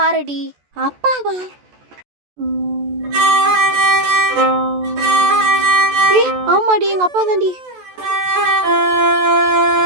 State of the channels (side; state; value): left; late; 14 ms